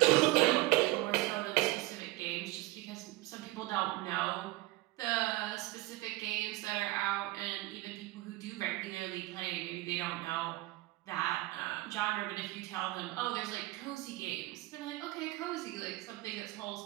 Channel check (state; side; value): quieter; left; 18.9 dB